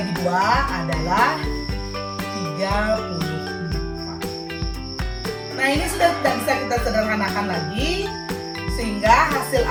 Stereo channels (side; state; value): both; identical; correlation 1.00